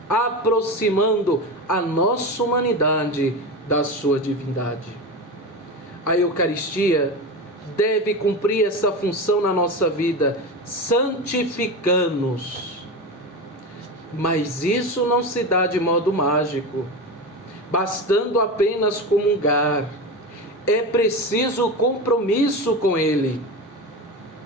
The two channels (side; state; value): both; normal; correlation 0.23